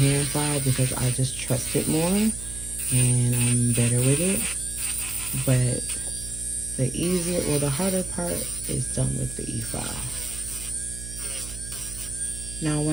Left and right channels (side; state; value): right; noise; hum, 12 dB below the sound